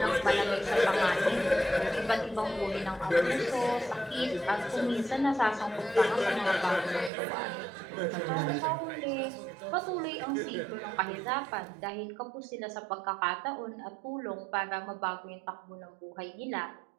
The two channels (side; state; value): left; drops out; at 7.1 s